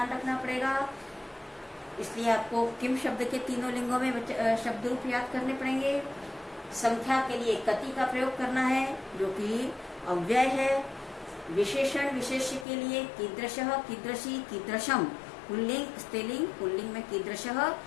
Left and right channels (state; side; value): drops out; right; at 12.7 s